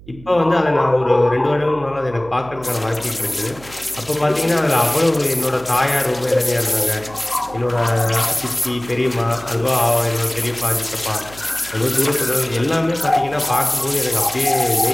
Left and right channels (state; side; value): noise; right; hum, 20 dB below the sound